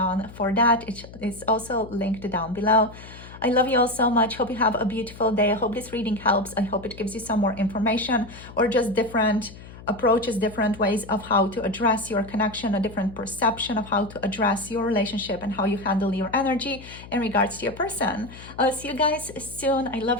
for that. It is also linked down below. I love you all so much. Hope you have a beautiful day. I hope this reading helps. I hope it gives you some more information or just different approaches, different ways of how to address your connection, a different perception of how to address your relationship and how you handle your energy in regards to your person. I'll see you guys soon. I love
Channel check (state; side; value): noise; left; hum, 17 dB below the sound